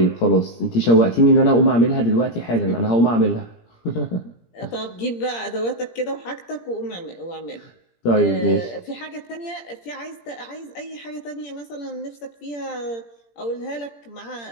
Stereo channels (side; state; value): right; late; 17 ms